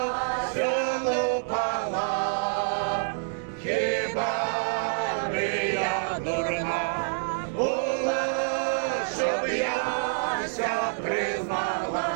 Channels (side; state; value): left; silent; digital silence